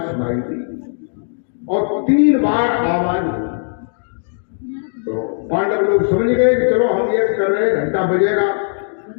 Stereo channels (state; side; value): silent; right; digital silence